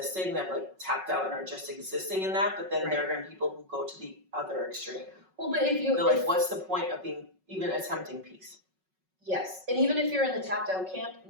that like tapped out and are just existing in that, but then there are going to be people who go to the other extreme. Well, but if they're like, what's the point of being even attempting peace? Yes, and even if you're in the tapped out camp,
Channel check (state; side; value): late; left; 5.4 ms